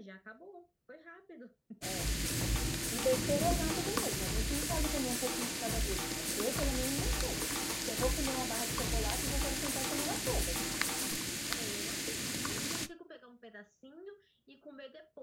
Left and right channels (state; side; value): identical; both; correlation 1.00